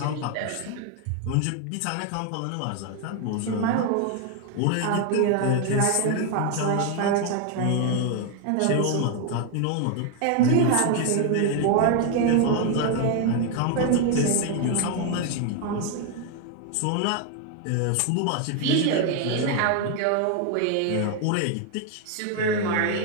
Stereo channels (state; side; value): different; both; correlation 0.01